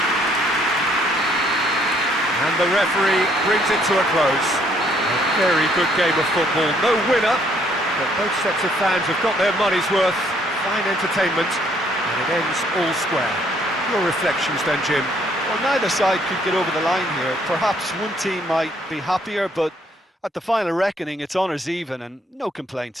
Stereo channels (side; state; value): both; normal; correlation 0.66